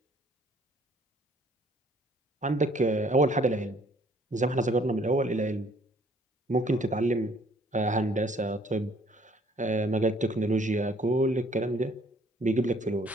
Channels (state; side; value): normal; both; correlation 0.60